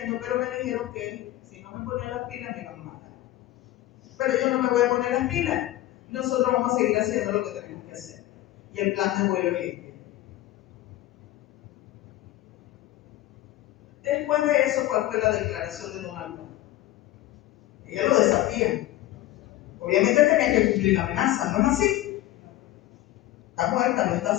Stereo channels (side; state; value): right; quieter; 15.3 dB